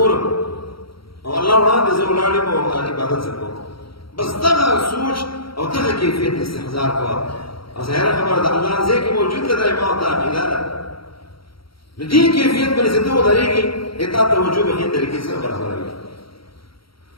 او الله وړاندې زه ولاړ یم او عبادت زه کوم بس دغه سوچ او دغه کیفیت استحضار کوه او ظاهره خبره ده الله ځای کې موجود ده دا ما او تا عقیده ده نو دې کیفیت باندې چې ته ودرېږي تا توجه به ښې طریقې سره برابروي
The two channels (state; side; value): late; right; 0.74 ms